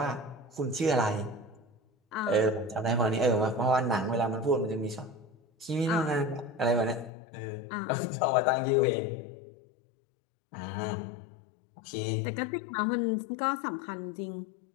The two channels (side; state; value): right; drops out; at 7.1 s